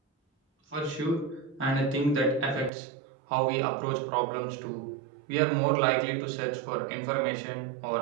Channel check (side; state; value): left; drops out; at 2.7 s